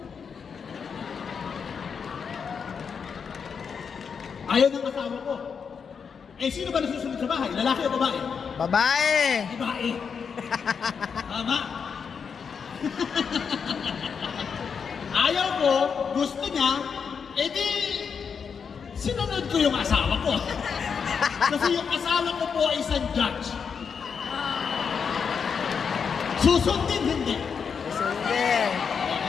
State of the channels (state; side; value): quieter; right; 6.3 dB